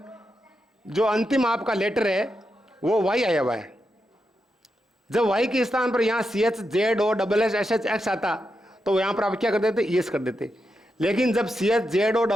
जो अंतिम आपका लेटर है वो वाई आया हुआ है। जब वाई के स्थान पर यहाँ C H Z O double S S H X आता, तो यहाँ पर आप क्या कर देते, यस कर देते। लेकिन जब C H Z O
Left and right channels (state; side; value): normal; both; correlation 0.86